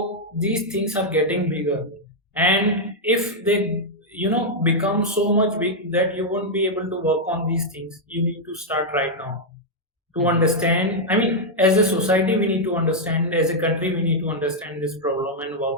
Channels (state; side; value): normal; both; correlation -0.03